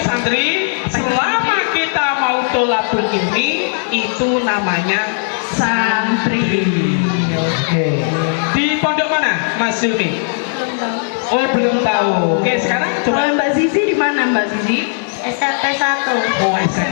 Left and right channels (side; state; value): right; silent; 69 dB below the other